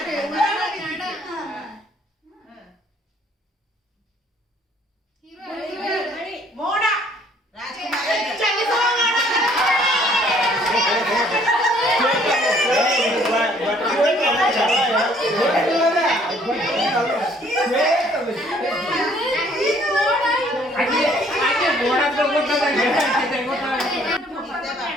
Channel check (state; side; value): normal; both; correlation 0.61